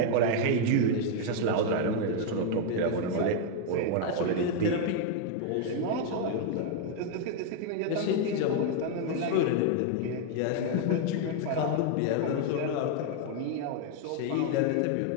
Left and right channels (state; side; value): different; both; correlation 0.00